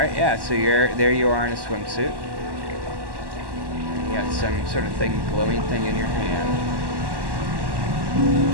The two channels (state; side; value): late; left; 1.1 ms